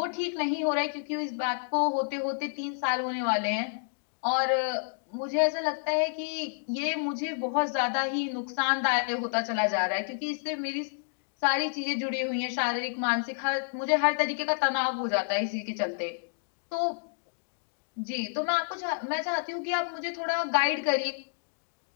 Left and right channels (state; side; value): silent; right; digital silence